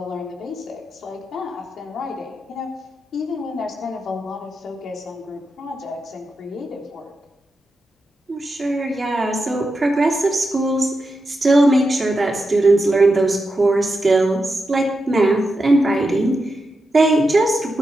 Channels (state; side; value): normal; both; correlation 0.88